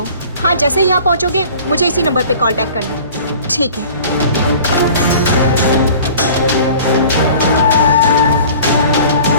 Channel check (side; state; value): both; inverted; correlation -0.45